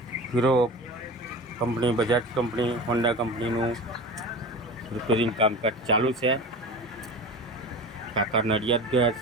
hero company, Bajaj company, Honda કંપનીનું રિપેરિંગ કામકાજ ચાલુ છે. કાકા નડિયાદ ગયા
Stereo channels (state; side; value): normal; both; correlation 0.32